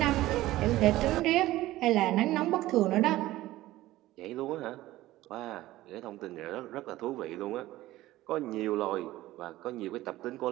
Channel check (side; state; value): left; quieter; 16.4 dB